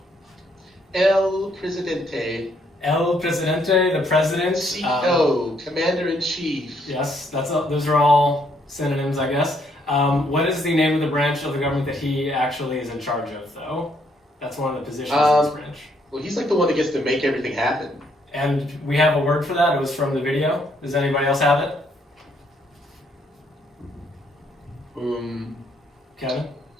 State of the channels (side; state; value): both; normal; correlation 0.70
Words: El Presidente. El Presidente, the president. CEO, Commander-in-Chief. Yes, those are all synonyms, I guess. What is the name of the branch of the government that he actually is in charge of, though? That's one of the positions in this branch. Well, he's like the one that gets to make everything happen. And we have a word for that. It was from the video. Does anybody else have it? Kevin?